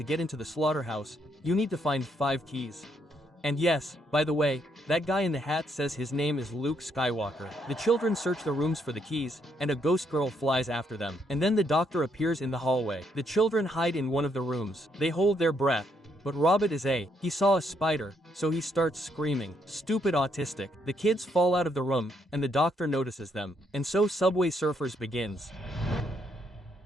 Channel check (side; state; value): both; normal; correlation 0.74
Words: get into the slaughterhouse, you need to find 5 keys. And yes, by the way, that guy in the hat says his name is Luke Skywalker. The children search the rooms for the keys, and a ghost girl flies after them. And then the doctor appears in the hallway. The children hide in one of the rooms. They hold their breath. But Robert he saw a spider, so he starts screaming, "Stupid autistic." The kids fall out of the room, and the doctor notices them. And so Subway Surfers begins.